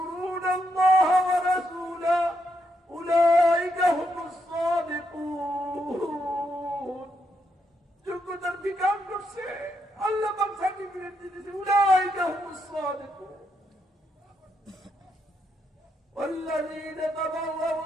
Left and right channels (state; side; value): normal; both; correlation 0.79